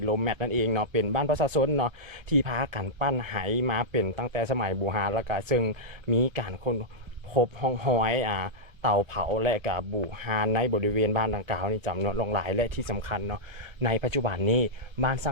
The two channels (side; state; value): left; late; 1.3 ms